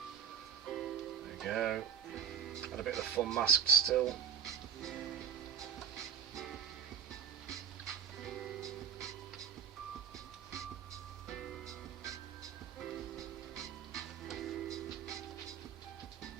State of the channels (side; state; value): left; quieter; 8.0 dB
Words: we go. Had a bit of the fun masked still.